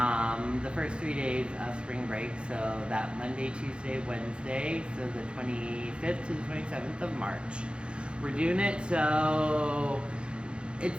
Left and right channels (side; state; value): left; late; 0.055 ms